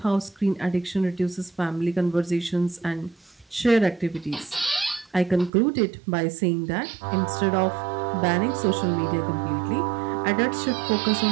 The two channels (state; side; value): drops out; left; at 5.5 s